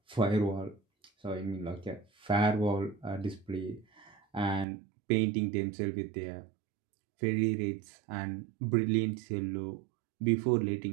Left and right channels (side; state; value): left; drops out; at 4.7 s